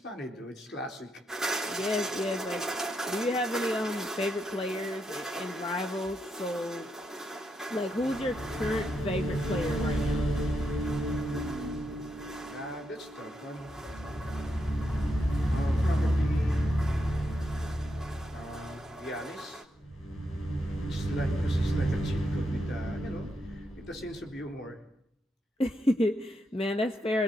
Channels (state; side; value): normal; both; correlation 0.82